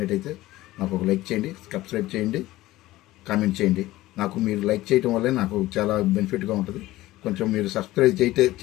నాకు ఒక లైక్ చేయండి, సబ్స్క్రైబ్ చేయండి, కామెంట్ చేయండి. నాకు మీరు లైక్ చేయడం వల్లే నాకు చాలా బెనిఫిట్గా ఉంటుంది. కొంచెం మీరు సబ్స్క్రైబ్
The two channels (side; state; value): right; quieter; 17.0 dB